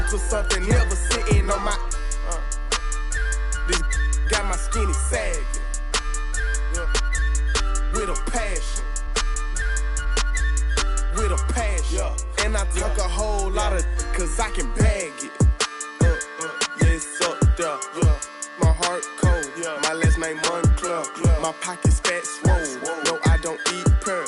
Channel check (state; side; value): identical; both; correlation 1.00